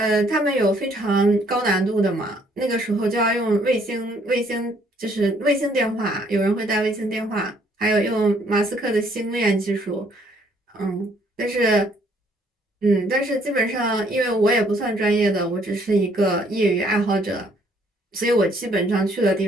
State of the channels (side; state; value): both; normal; correlation 0.65